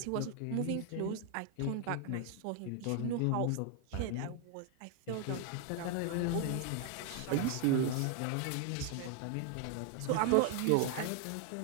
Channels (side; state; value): both; different; correlation 0.00